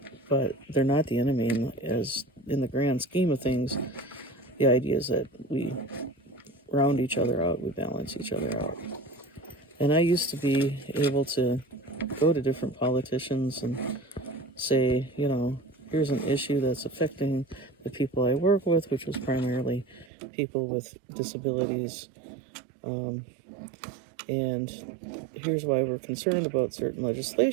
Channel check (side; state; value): left; drops out; at 20.1 s